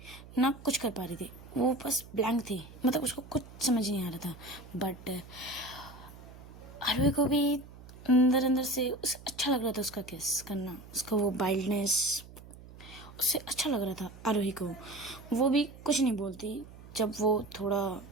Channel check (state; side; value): noise; right; hum, 18 dB below the sound